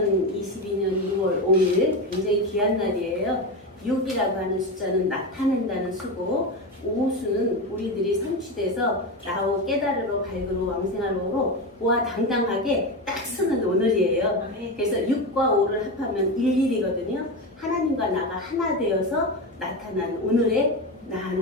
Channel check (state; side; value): normal; both; correlation 0.18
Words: 6월 5일 굉장히 귀한 날이에요. 6이라고 하는 숫자는 나타낸다는 수고, 오수는 우리들이 성취돼서 나오 깨달으러 밝으로 왕생하로 보아 당당하게 딱 쓰는 오늘이에요. 그래서 6과 5를 합하면 11이거든요. 하나님과 나가 하나 되어서 나타난 오늘의 나